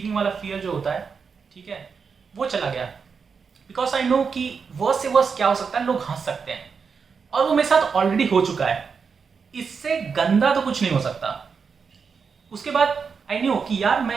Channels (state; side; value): quieter; left; 5.7 dB